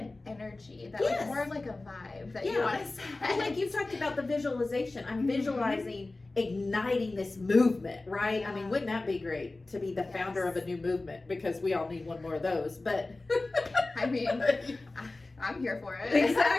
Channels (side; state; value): right; quieter; 3.1 dB